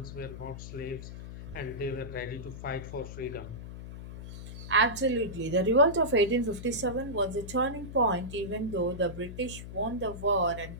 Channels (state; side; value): noise; left; hum, 11 dB below the sound